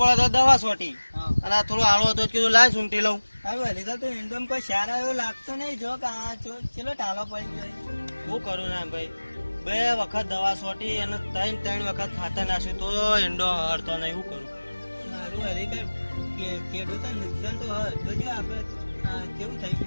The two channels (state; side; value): inverted; both; correlation -1.00